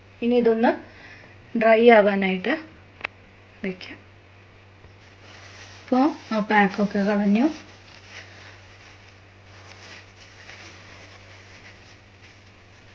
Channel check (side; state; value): both; identical; correlation 1.00